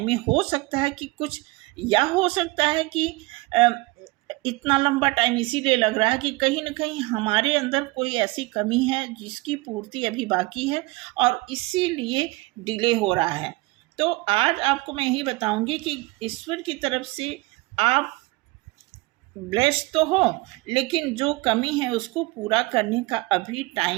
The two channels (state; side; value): quieter; left; 22.4 dB